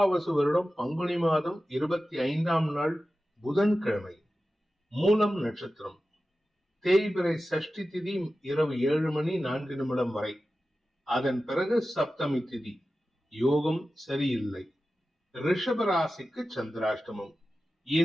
வருடம் பங்குனி மாதம் 25ஆம் நாள் புதன்கிழமை. மூலம் நட்சத்திரம். தேய்பிறை சஷ்டி திதி இரவு 7:04 வரை. அதன் பிறகு சப்தமி திதி. யோகம் சரியில்லை. ரிஷபராசிக்கு சந்திராஷ்டமம்.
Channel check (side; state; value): both; normal; correlation 0.94